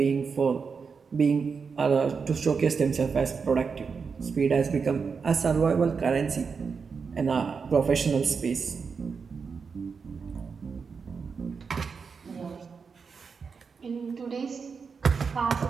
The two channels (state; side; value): quieter; left; 5.5 dB